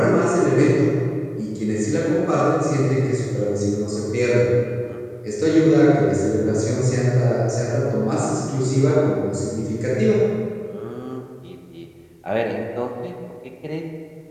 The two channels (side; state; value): both; identical; correlation 1.00